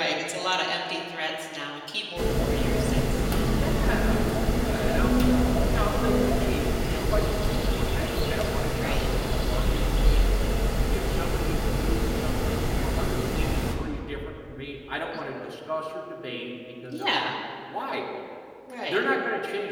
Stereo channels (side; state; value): both; identical; correlation 1.00